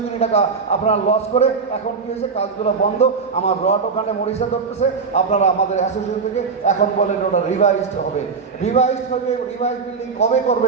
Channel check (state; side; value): quieter; left; 5.2 dB